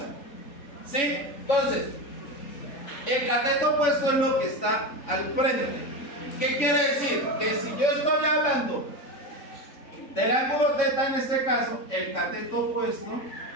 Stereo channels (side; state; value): right; late; 3.6 ms